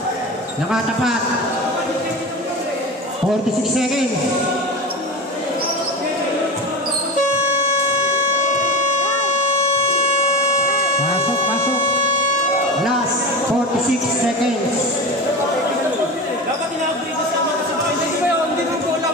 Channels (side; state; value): both; normal; correlation 0.27